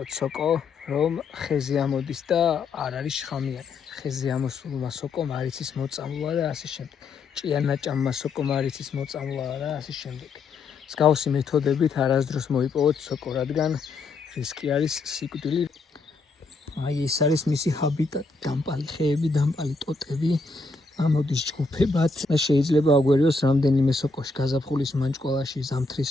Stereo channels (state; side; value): quieter; right; 3.8 dB